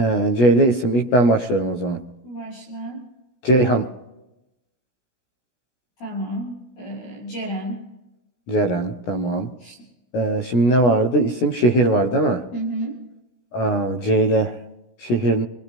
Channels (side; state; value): right; late; 16 ms